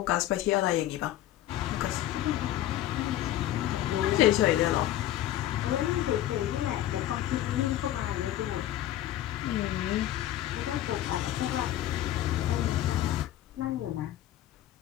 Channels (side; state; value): right; quieter; 13.1 dB